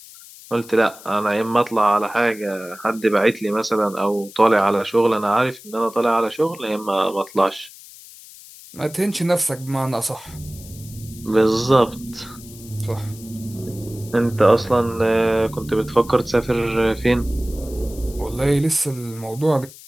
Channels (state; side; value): noise; left; hiss, 19 dB below the sound